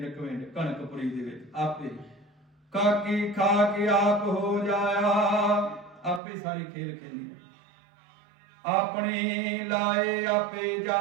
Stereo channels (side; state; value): left; drops out; at 6.2 s